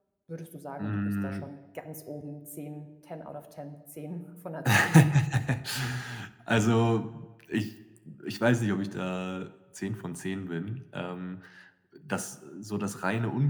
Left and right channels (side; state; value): both; identical; correlation 1.00